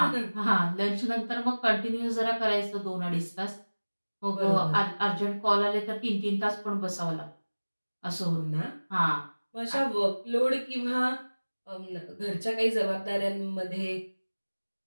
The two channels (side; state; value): both; inverted; correlation -1.00